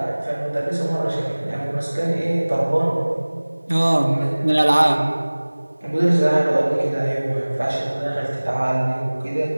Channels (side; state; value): both; inverted; correlation -1.00